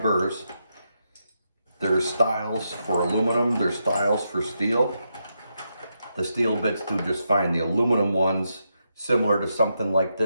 burrs. There's styles for aluminum, there's styles for steel. The steel bits do just fine. The aluminum ones, similar to something like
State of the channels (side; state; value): both; inverted; correlation -0.83